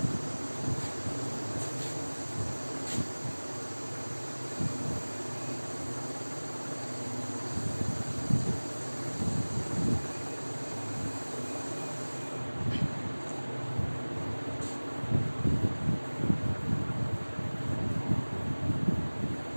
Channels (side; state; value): both; inverted; correlation -1.00